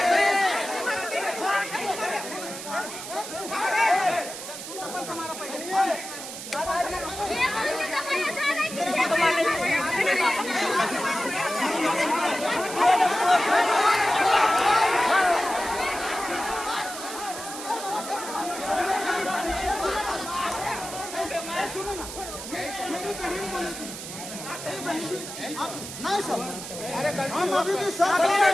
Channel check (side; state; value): right; noise; hiss, 9 dB below the sound